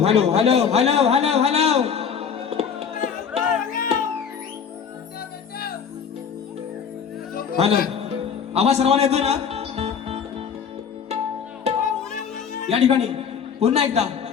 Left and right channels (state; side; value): quieter; right; 7.0 dB